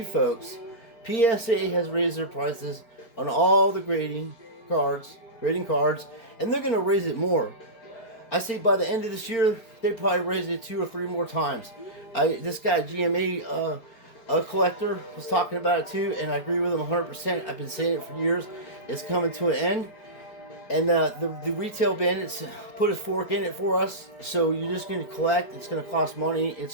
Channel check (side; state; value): right; late; 4.4 ms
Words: folks, PSA has raised their prices on all the grading cards, and they're going to raise it more. I say by the end of this year, they probably raise it 2 or 3 more times. This guy, GMA collector, was talking about it too, and I agree with him 100%. I've been saying it for years. It's coming to an end. And the retail bandits put a fork in it for us. So you're just going to collect. It's going to cost money.